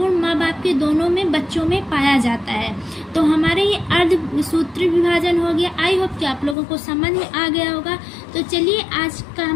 माँ बाप के दोनों में बच्चों में पाया जाता है। तो हमारे ये अर्धसूत्री विभाजन हो गया। आई होप कि आप लोगों को समझ में आ गया होगा। तो चलिए आज का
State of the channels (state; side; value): drops out; right; at 6.6 s